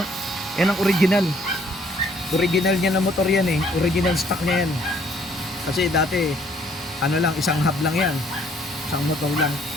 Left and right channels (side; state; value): both; normal; correlation 0.63